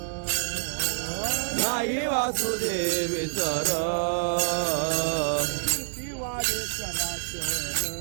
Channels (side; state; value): left; silent; digital silence